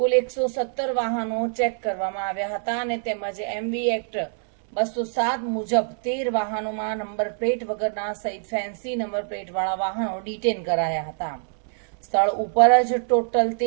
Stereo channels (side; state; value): left; silent; 62 dB below the other